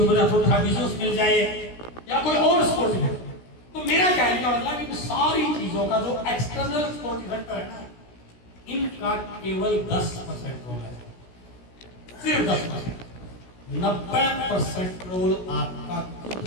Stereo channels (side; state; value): right; late; 16 ms